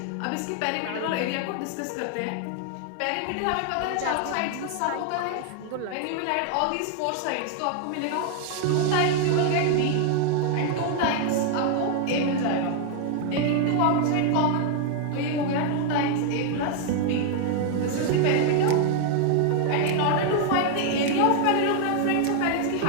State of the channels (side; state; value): both; different; correlation 0.00